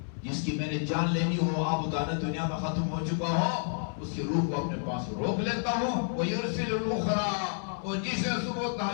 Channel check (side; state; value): right; silent; 58 dB below the other